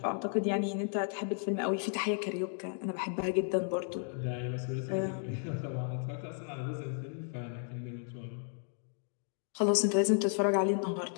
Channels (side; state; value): right; silent; 55 dB below the other